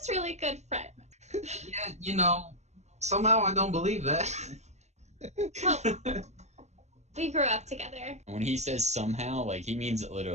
really good friends. Yeah, you know, somehow I don't believe that. Well, we grew up together. When he says somehow, like he means it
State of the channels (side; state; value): left; late; 0.33 ms